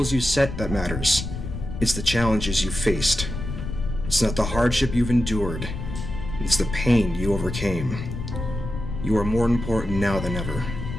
you set that matters, it's the challenges you faced. It's not the hardship you've endured, it's the pain you overcame. You are more important now than ever.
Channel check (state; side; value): noise; left; rumble, 6 dB below the sound